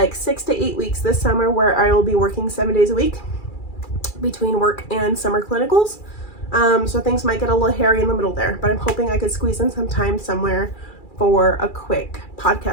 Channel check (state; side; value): late; right; 2.4 ms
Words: 6 to 8 weeks this summer where I will be working 7 days a week between work and summer clinicals. So things might get a little hairy in the middle there, but I'm hoping I could squeeze in some time somewhere for a quick